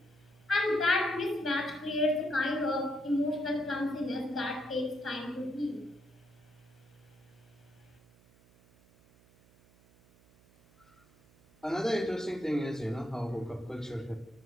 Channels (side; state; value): right; noise; hum, 28 dB below the sound